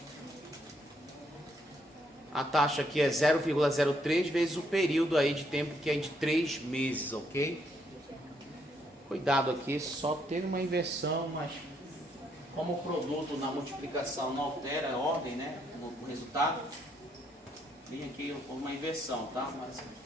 A taxa aqui é 0,03 vezes o período aí de tempo, que é de 3 meses, ok? Cuidado aqui, só teve uma inversão, mas como o produto na multiplicação não altera a ordem, né? O resultado, tem aqui uma inversão, tá? Mas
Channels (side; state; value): both; normal; correlation 0.73